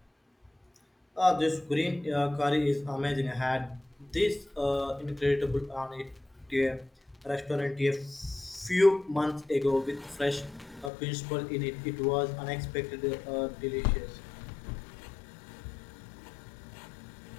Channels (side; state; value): right; drops out; at 10.9 s